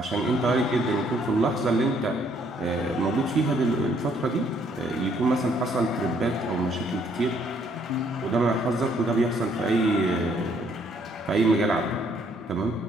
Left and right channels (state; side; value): normal; both; correlation 0.67